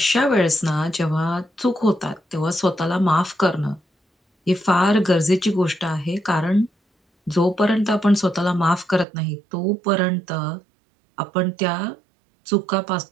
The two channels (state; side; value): drops out; left; at 9.1 s